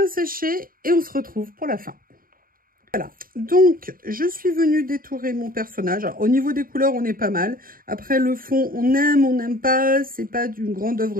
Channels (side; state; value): left; late; 0.41 ms